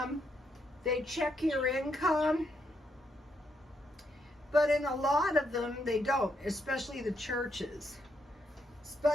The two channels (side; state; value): both; normal; correlation 0.77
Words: they check your income, but in a lot of them, they don't, especially the churches.